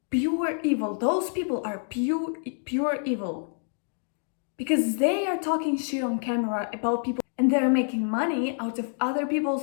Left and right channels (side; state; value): right; silent; 60 dB below the other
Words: pure evil. Those people are pure evil because they are talking shit on camera about people and they're making money out of other